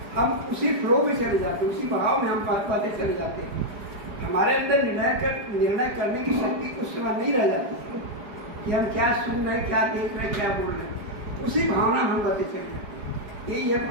हम उसी फ्लो में चले जाते हैं, उसी भाव में हम बातें चले जाते हैं। हमारे अंदर निर्णय करने की शक्ति उस समय नहीं रह जाती है कि हम क्या सुन रहे हैं, क्या देख रहे हैं, क्या बोल रहे हैं। उसी भावना में हम बातें चले जाते हैं। यही है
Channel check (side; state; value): left; late; 4.8 ms